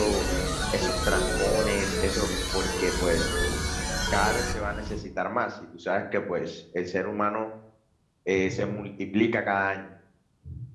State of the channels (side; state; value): both; identical; correlation 1.00